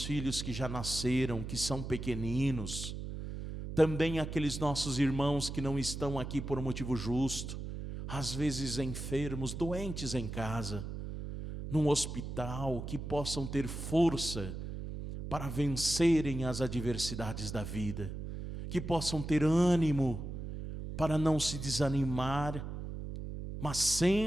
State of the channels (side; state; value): right; noise; hum, 7 dB below the sound